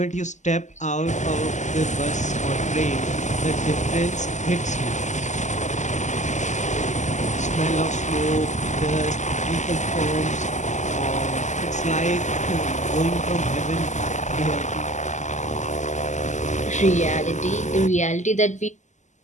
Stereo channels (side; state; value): right; late; 0.34 ms